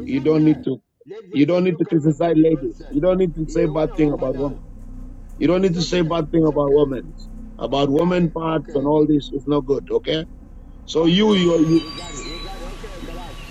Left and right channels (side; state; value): both; identical; correlation 1.00